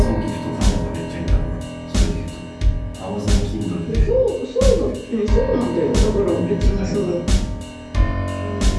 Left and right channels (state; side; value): identical; both; correlation 1.00